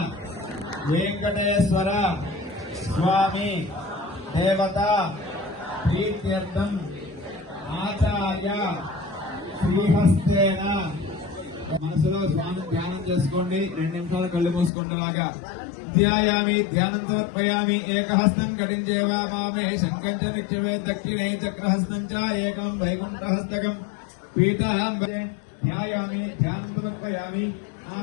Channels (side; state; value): right; drops out; at 14.7 s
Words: వెంకటేశ్వర స్వామి దేవత ప్రీత్యర్థం ఆచార్య శ్రీహస్తేన. మనసులో స్వామి ధ్యానం చేసుకోండి, 2 నిమిషాలు కళ్ళు మూసుకుంటలాగా. ధ్యాయామి ధ్యానం సమర్పయామి. ఏకహస్తం కటించేవా మామే శంఖం చ నిత్యమే దక్షిణే చక్రహస్తం చ ఏకం వైకుంఠహస్తకం పీఠాం ధ్యాయామి ధ్యానం సమర్పయామి.